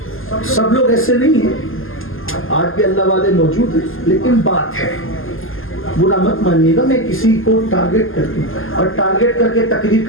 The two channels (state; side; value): late; right; 0.60 ms